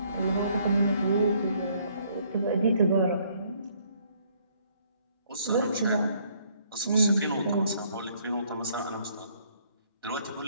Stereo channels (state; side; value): inverted; both; correlation -0.65